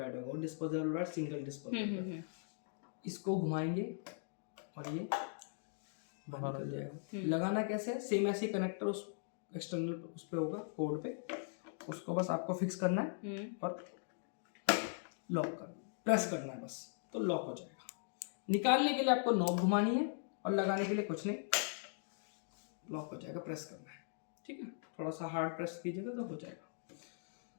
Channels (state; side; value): silent; right; digital silence